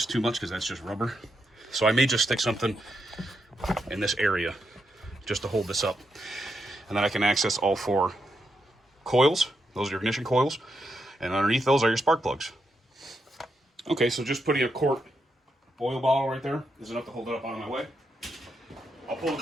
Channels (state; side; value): normal; both; correlation 0.83